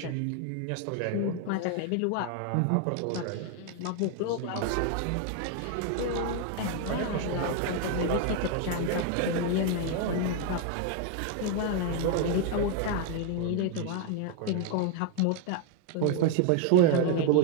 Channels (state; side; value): different; both; correlation 0.00